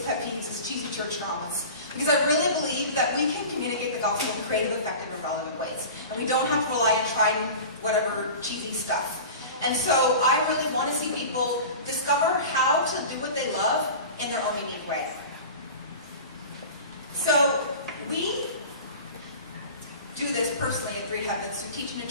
pet peeves is cheesy church dramas. Because I really believe that we can communicate the gospel in creative, effective, and relevant ways. And we don't have to rely on tried and whatever cheesy stuff. And so I really want to see people discover how to do what they love in their own unique way. So we do this personally at Three Heavens through teaching and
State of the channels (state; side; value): inverted; both; correlation -0.35